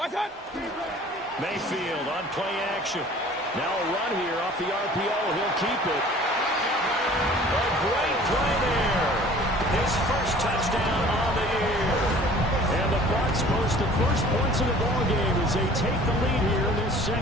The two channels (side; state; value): both; normal; correlation 0.49